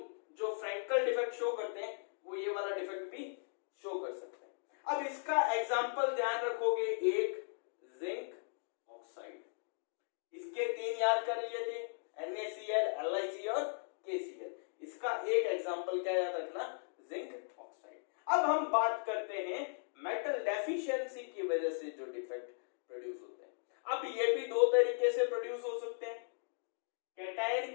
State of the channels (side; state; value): right; silent; digital silence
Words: जो फ्रैंकल डिफेक्ट शो करते हैं वो ये वाला डिफेक्ट भी शो कर सकते हैं। अब इसका एग्जांपल ध्यान रखोगे, एक जिंक ऑक्साइड, इसके 3 याद कर लिए थे, NaCl, LiC और KCl। इसका एक एग्जांपल क्या याद रखना, जिंक ऑक्साइड। अब हम बात करते हैं मेटल डेफिशिएंसी की वजह से जो डिफेक्ट प्रोड्यूस होते हैं। अब ये भी 2 तरीके से प्रोड्यूस हो सकते हैं,